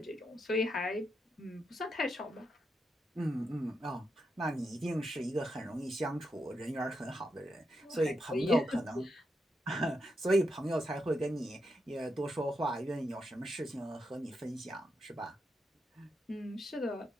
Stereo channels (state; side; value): normal; both; correlation 0.83